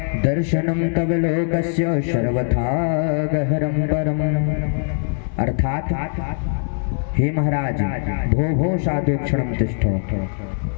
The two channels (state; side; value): silent; right; 65 dB below the other